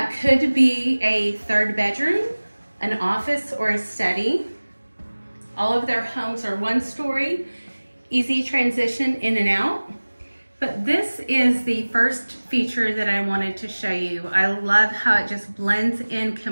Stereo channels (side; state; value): both; inverted; correlation -1.00